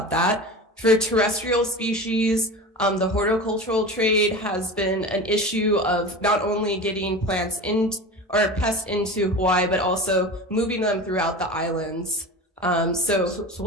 that. For terrestrial species, the horticultural trade has been an issue of not only getting plants in or pests into Hawaii, but also moving them throughout the islands. So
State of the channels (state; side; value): normal; both; correlation 0.31